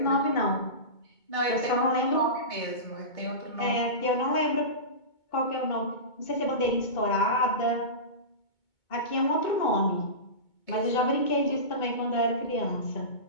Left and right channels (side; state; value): right; late; 2.2 ms